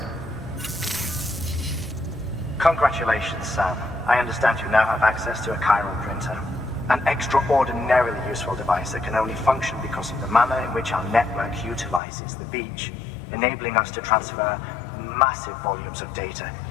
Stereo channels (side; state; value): right; drops out; at 12.0 s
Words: Congratulations, Sam. I understand you now have access to a chiral printer. An extraordinarily useful device that can only function because of the manner in which our network utilizes the beach, enabling us to transfer massive volumes of data